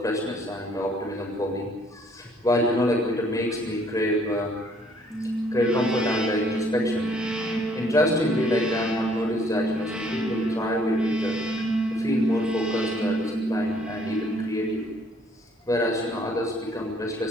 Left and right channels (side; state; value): both; normal; correlation 0.63